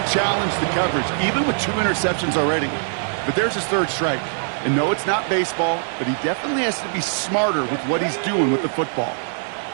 challenge the coverage, even with 2 interceptions already. But there's his 3rd strike. And no, it's not baseball, but he definitely has to be smarter with what he's doing with the football.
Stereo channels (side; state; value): left; silent; digital silence